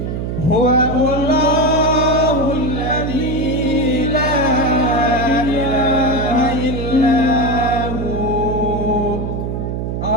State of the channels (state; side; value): noise; right; hum, 3 dB below the sound